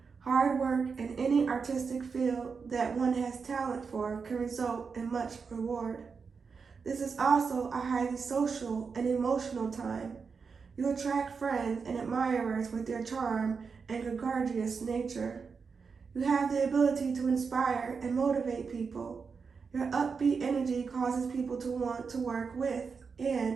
Hard work in any artistic field that one has talent for can result in much reward. This is also a highly social and emotional time. You attract friends and admirers with your charm and gregarious nature. You have the ability to inspire and motivate people. Your upbeat energy causes people to want to work with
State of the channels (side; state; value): left; quieter; 5.4 dB